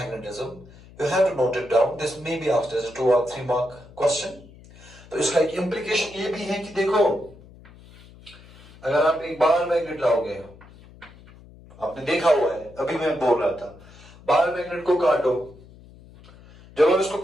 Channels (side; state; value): left; noise; hum, 22 dB below the sound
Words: You have to note it down. This may be asked as a 2 or 3 mark question. तो इसका एक implication ये भी है कि देखो, अगर आप एक बार मैग्नेट लाओगे, आपने देखा हुआ है, अभी मैं बोल रहा था, बार मैग्नेट को काटो, जब आप इसको